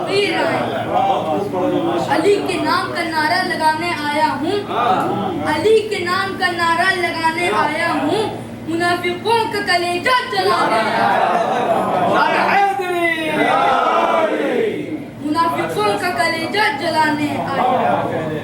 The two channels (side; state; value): both; identical; correlation 1.00